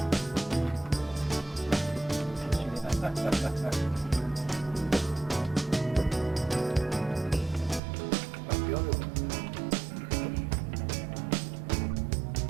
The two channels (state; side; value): drops out; left; at 7.8 s